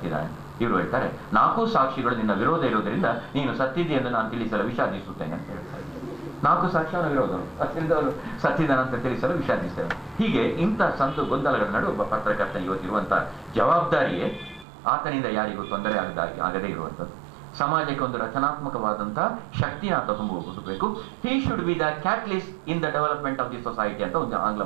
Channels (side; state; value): left; drops out; at 14.7 s